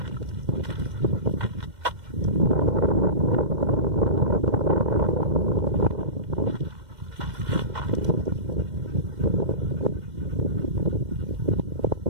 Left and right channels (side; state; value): left; late; 2.1 ms